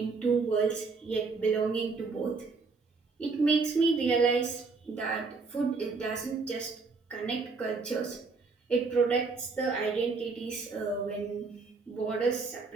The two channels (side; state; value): left; quieter; 4.3 dB